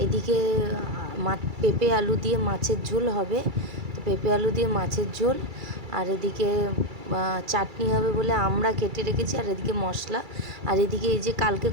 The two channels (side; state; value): left; late; 2.3 ms